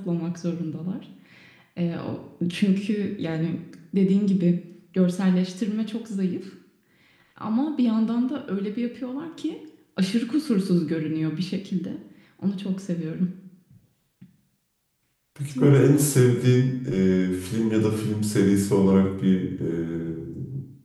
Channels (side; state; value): both; identical; correlation 1.00